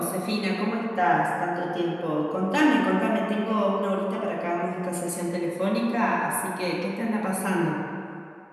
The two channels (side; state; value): both; identical; correlation 1.00